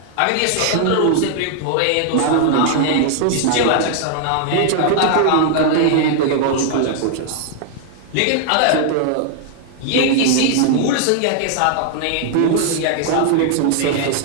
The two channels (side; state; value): both; different; correlation 0.00